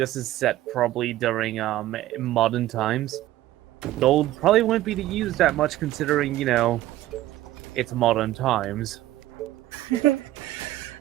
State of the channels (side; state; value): left; quieter; 15.0 dB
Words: is set probably during modern times, gold probably wouldn't be used that much considering, it's modern times.